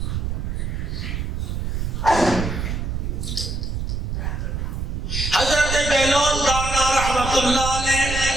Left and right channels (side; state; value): right; noise; rumble, 2 dB below the sound